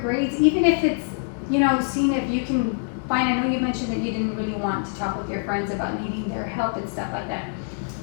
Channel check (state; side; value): silent; right; 62 dB below the other